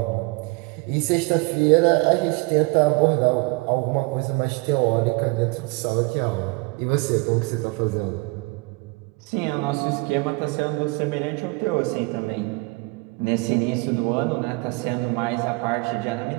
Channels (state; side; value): quieter; left; 27.1 dB